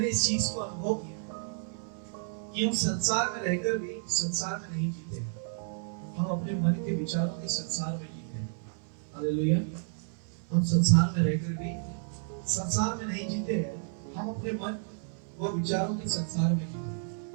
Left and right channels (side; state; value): left; silent; 57 dB below the other